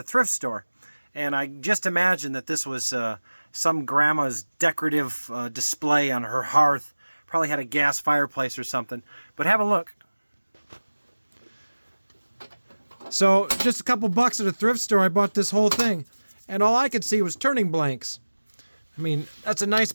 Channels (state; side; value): inverted; both; correlation -1.00